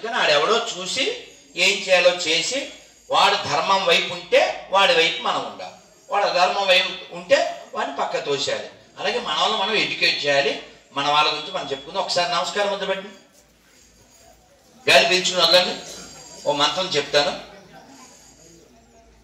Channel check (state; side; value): identical; both; correlation 1.00